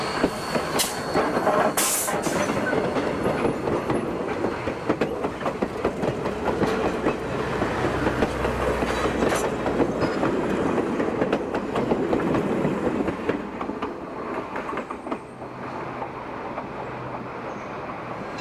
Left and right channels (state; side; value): identical; both; correlation 1.00